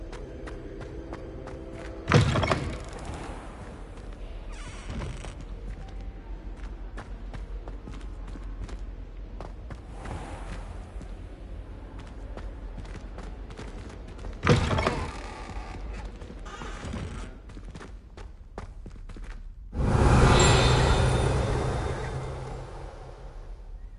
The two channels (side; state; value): both; identical; correlation 1.00